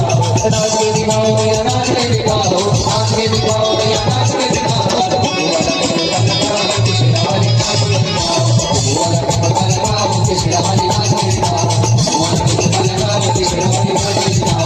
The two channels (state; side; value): identical; both; correlation 1.00